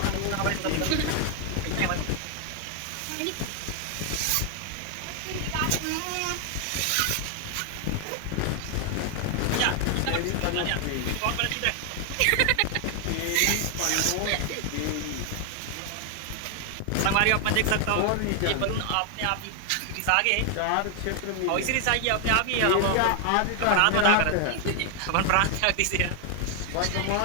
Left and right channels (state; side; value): different; both; correlation 0.00